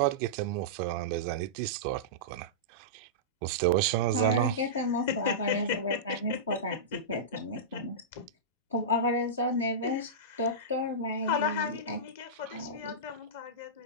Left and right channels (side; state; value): both; normal; correlation -0.15